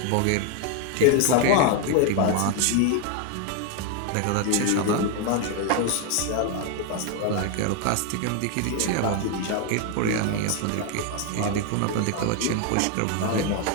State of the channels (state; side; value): different; both; correlation 0.01